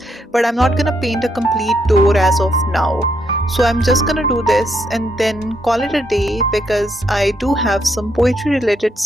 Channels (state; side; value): normal; both; correlation 0.76